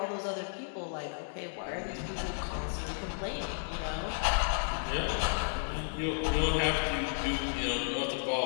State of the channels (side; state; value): right; silent; digital silence